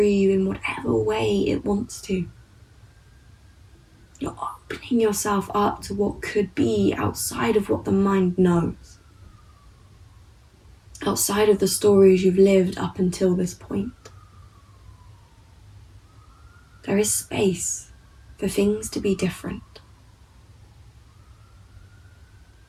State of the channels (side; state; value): both; identical; correlation 1.00